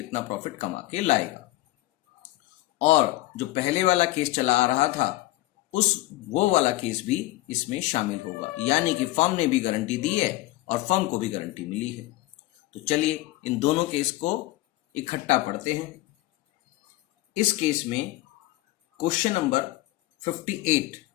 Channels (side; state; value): right; quieter; 18.0 dB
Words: प्रॉफिट कमा के लाएगा। और जो पहले वाला केस चला आ रहा था वो वाला केस भी इसमें शामिल होगा, यानी कि फर्म ने भी गारंटी दी है और फर्म को भी गारंटी मिली है। तो चलिए इन दोनों केस को इकट्ठा पढ़ते हैं। इस केस में क्वेश्चन नंबर